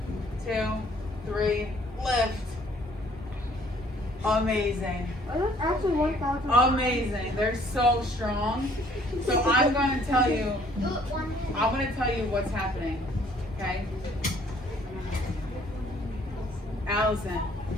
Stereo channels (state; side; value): normal; both; correlation 0.60